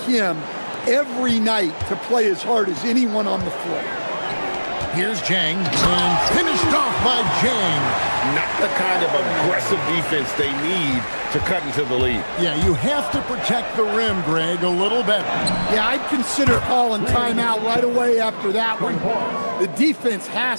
him every night to play as hard as anyone on the floor. Here's Jang, and finished off by Jang. Not the kind of aggressive defense they need to cut into the lead. Yeah, you have to protect the rim, Greg, a little better. Yeah, I'd consider calling timeout right away after that one. The defense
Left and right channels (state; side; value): inverted; both; correlation -1.00